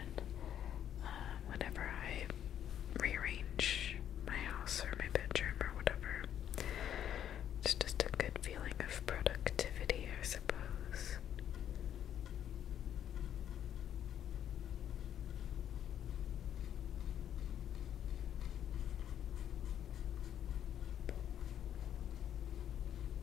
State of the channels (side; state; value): right; quieter; 10.1 dB